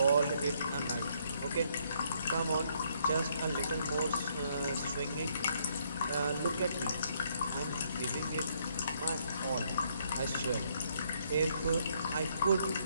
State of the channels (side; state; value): both; inverted; correlation -0.70